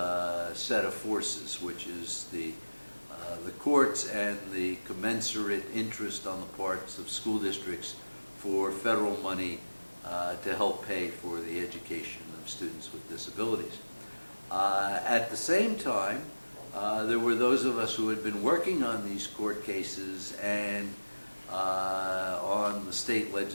set of forces, which is the courts and the commensurate interest on the parts of school districts for federal money to help pay for the education of students with disabilities. At the same time, there were those of us who had been working on these court cases and on the state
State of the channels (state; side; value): inverted; both; correlation -1.00